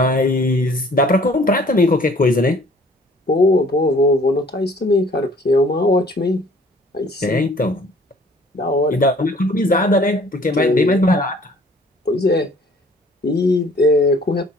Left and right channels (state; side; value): normal; both; correlation 0.55